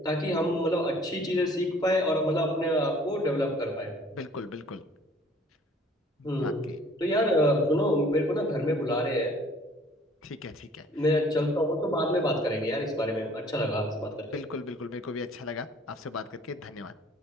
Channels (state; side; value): normal; both; correlation 0.55